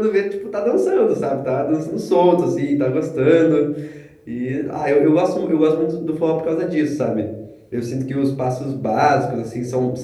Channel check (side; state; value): both; identical; correlation 1.00